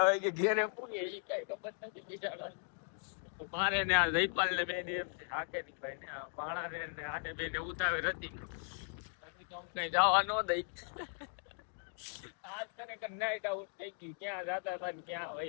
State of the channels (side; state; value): right; silent; 53 dB below the other